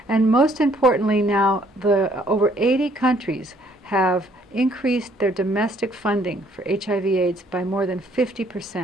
And most importantly now, over 80 countries have increased their domestic funding for HIV/AIDS by more than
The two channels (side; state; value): both; normal; correlation 0.64